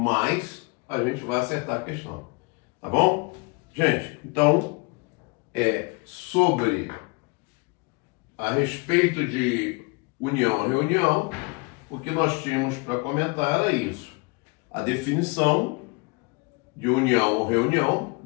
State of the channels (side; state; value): right; quieter; 29.8 dB